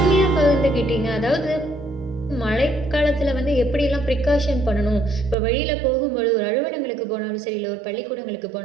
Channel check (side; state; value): left; drops out; at 5.4 s